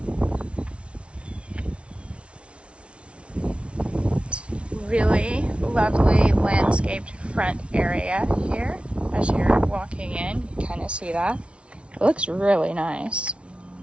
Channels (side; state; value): left; late; 0.060 ms